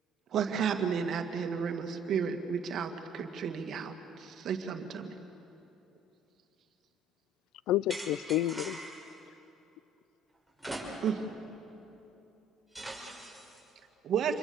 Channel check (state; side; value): normal; both; correlation 0.53